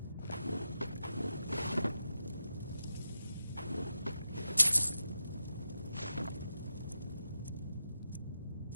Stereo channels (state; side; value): inverted; both; correlation -0.88